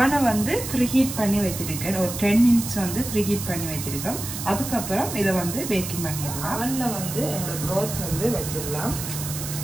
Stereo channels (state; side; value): noise; right; hiss, 7 dB below the sound